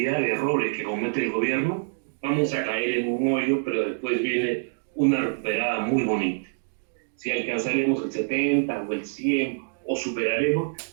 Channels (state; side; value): silent; left; digital silence